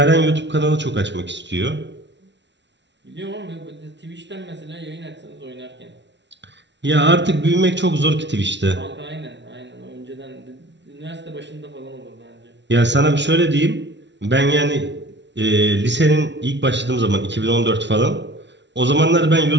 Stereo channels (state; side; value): late; left; 0.51 ms